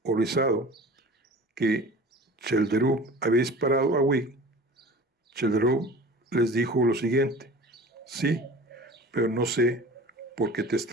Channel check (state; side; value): normal; both; correlation 0.40